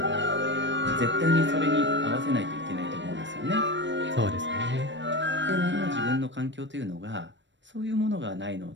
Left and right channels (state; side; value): late; left; 0.53 ms